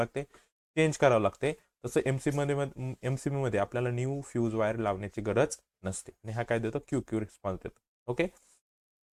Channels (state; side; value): identical; both; correlation 1.00